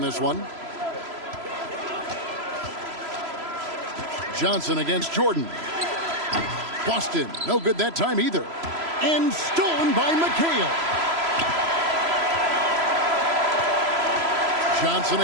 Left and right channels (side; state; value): left; late; 3.0 ms